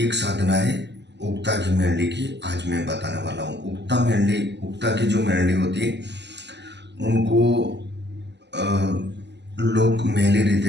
साधना है उक्ता की मेरली की। आज मैं बताने वाला हूँ उक्ता की जो मेरली होती है उनको लोग मेले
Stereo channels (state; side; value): late; left; 0.50 ms